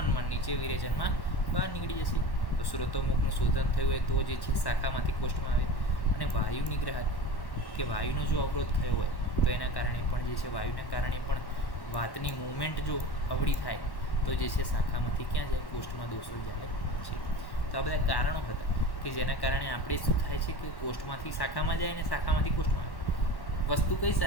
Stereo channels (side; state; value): right; late; 1.1 ms